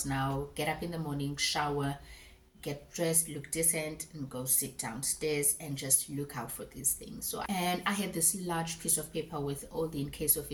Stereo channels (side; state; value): both; identical; correlation 1.00